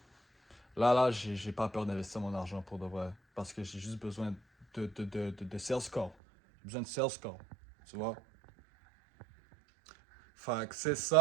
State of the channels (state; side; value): drops out; left; at 6.2 s